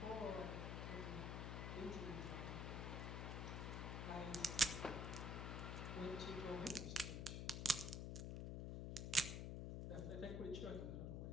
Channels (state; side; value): noise; left; hum, 2 dB below the sound